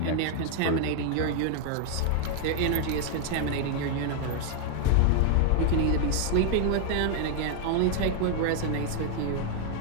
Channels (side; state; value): both; different; correlation 0.00